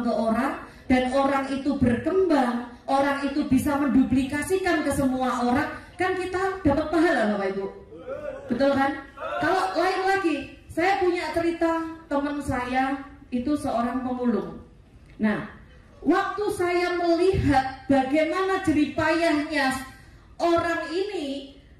ke orang, dan orang itu berkembang, orang itu bisa menduplikasikan ke semua orang, kan kita dapat pahala Bapak Ibu. Betul kan? Kalau lain lagi, saya punya cerita teman saya itu seorang pemulung. Nah, waktu saya melihat bagaimana jeripayahnya orang ini,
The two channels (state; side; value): identical; both; correlation 1.00